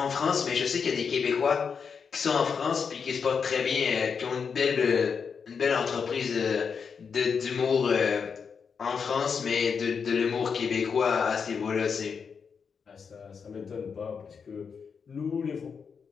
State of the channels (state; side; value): quieter; right; 6.1 dB